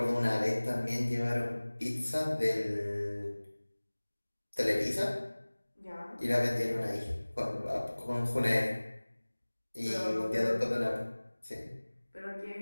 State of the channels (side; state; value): both; inverted; correlation -1.00